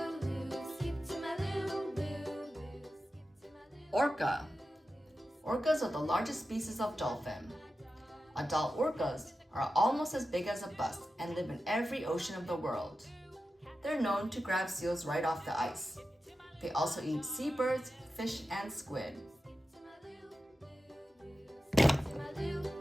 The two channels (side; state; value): both; normal; correlation 0.92